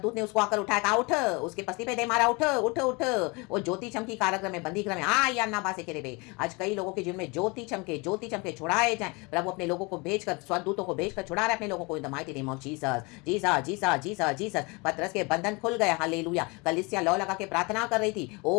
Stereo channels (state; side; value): quieter; right; 27.8 dB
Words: ने उसको आकर उठाया, कहा उठ, उसके पस्ती पे दे मारा, उठ उठ उठ। वो ज्योति चमकी कारागृह में, बंदी गृह में, आ या ना बासे के रे। आज कई लोगों के जीवन में ज्योति चमके छुड़ाए जाए। प्रभु अपने लोगों को भेजकर, स्वर्गदूतों को भेजकर छुड़ा रहे अपने लोगों को इन the mighty name of Jesus, Jesus Jesus Jesus Jesus. पतरस के बंधन खुल गए, हालेलुया। कलीसिया लौ लगा के प्रार्थना कर रही थी।